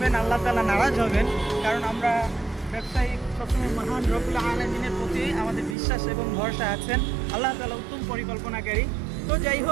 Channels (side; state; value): left; drops out; at 5.8 s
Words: না, আল্লাহ তাআলা নারাজ হবেন। কারণ আমরা ব্যবসায়ী সবসময় মহান রব্বুল আলামিনের প্রতি আমাদের বিশ্বাস এবং ভরসা আছেন। আল্লাহ তাআলা উত্তম পরিকল্পনাকারী। তো যাই